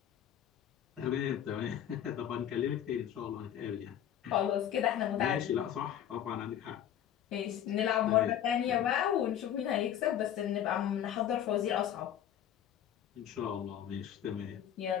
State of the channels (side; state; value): right; quieter; 10.4 dB